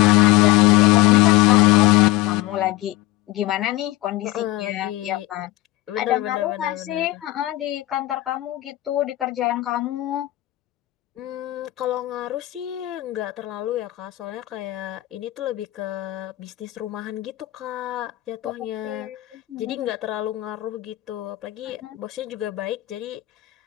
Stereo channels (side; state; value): right; quieter; 17.8 dB